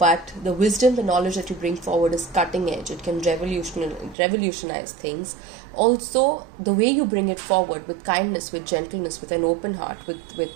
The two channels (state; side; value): drops out; left; at 4.2 s